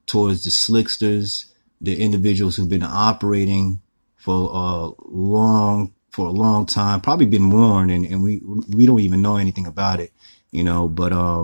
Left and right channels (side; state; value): both; inverted; correlation -1.00